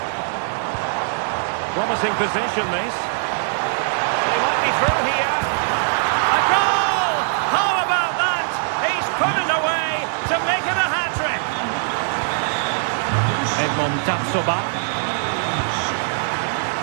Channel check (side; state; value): left; silent; digital silence